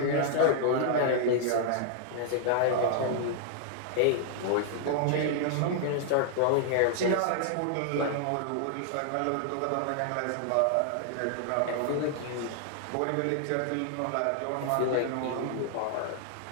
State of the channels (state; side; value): different; both; correlation -0.01